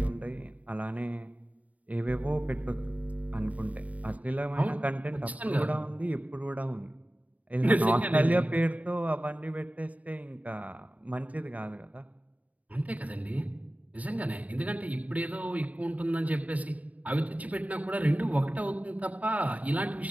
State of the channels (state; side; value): late; left; 0.071 ms